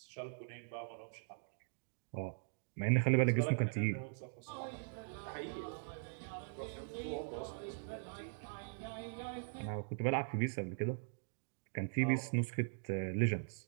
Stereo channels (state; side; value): silent; left; digital silence